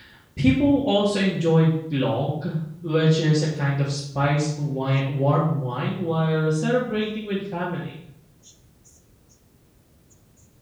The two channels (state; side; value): identical; both; correlation 1.00